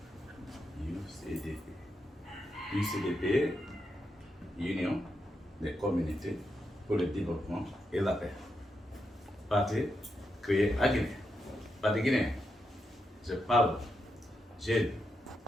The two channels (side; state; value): both; normal; correlation 0.84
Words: UCDP. UCDP, Union des communautés pour le développement et la paix. Parti créé à Guinée. Parti guinéen. Je parle jeunes,